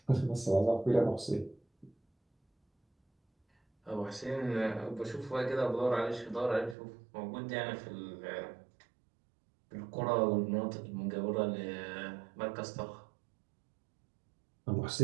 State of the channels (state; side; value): drops out; left; at 6.8 s